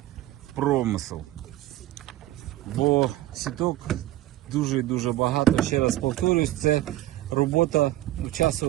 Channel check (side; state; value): left; quieter; 15.4 dB